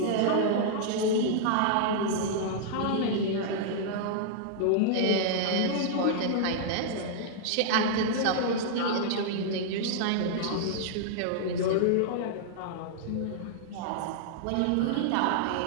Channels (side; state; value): both; different; correlation -0.01